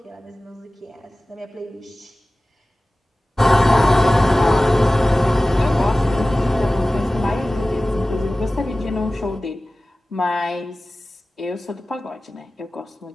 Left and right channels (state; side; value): normal; both; correlation 0.97